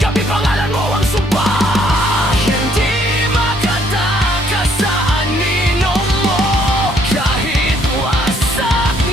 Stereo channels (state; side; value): normal; both; correlation 0.66